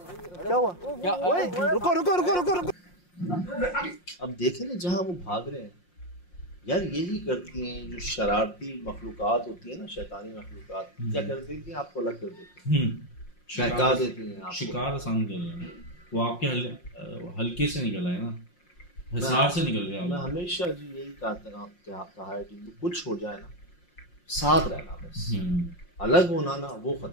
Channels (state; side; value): late; right; 5.6 ms